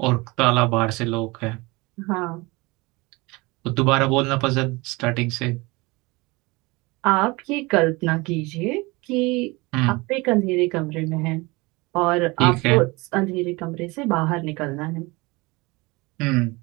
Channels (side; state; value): left; quieter; 24.2 dB